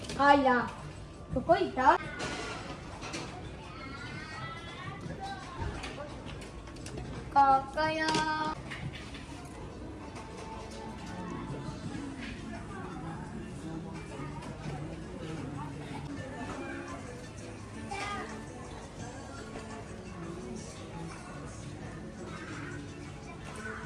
あいらどこ行ったここよ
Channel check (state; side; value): identical; both; correlation 1.00